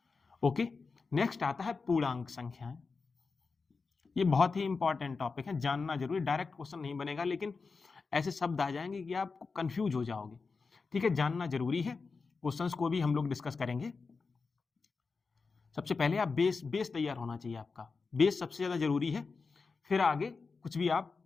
ओके, नेक्स्ट आता है पूर्णांक संख्याएं। ये बहुत ही इंपॉर्टेंट टॉपिक है, जानना जरूरी। डायरेक्ट क्वेश्चन नहीं बनेगा, लेकिन ऐसे शब्द आ जाएंगे कि आप कंफ्यूज हो जाओगे। ठीक है, जानना जरूरी है। क्वेश्चंस को भी हम लोग डिस्कस करेंगे। सबसे पहले आप बेस तैयार होना चाहिए, आपका बेस सबसे ज्यादा जरूरी है। फिर आगे कुछ भी आप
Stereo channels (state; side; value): quieter; right; 4.5 dB